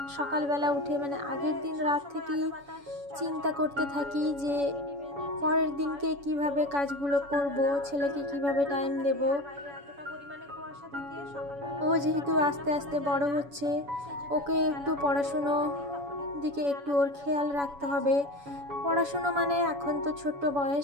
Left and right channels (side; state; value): left; late; 7.1 ms